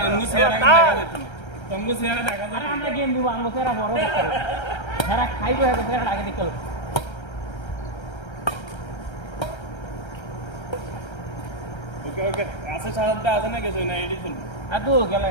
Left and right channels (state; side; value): late; right; 1.3 ms